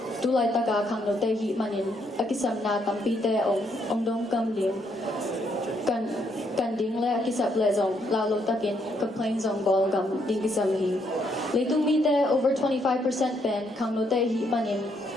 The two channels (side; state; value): both; normal; correlation 0.73